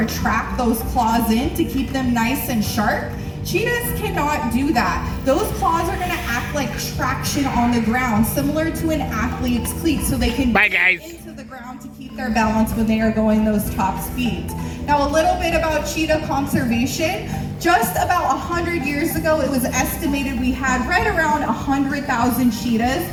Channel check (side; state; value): both; identical; correlation 1.00